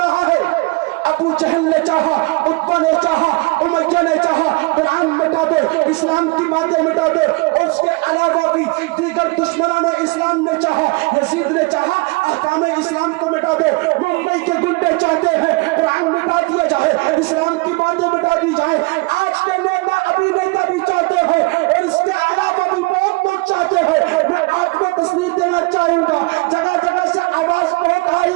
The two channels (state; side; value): quieter; left; 26.3 dB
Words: ہے. ابو جہل نے چاہا, عتبہ نے چاہا, امیہ نے چاہا قرآن مٹا دے, اسلام کی باتیں مٹا دے. اس کے علاوہ بھی دیگر دشمنان اسلام نے چاہا, یزید نے چاہا احکام اسلام کو مٹا دے. ممبئی کے گنڈے چاہتے ہیں قرآن مٹا دیا جائے, اسلام کی باتیں مٹا دی جائے. آج کے نیتا ابھی نیتا بھی چاہتے ہیں اور اس کے علاوہ بھی بہت لوگ چاہتے ہیں. میں آپ کو تصویر دینا چاہوں گا, جگہ جگہ سے آواز بہت